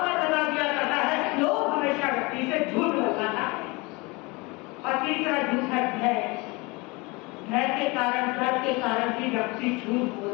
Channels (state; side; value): quieter; right; 25.7 dB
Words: लगा दिया करता है। लोग हमेशा व्यक्ति से झूठ लगाता है। और तीसरा झूठ है भय। भय के कारण, डर के कारण भी व्यक्ति झूठ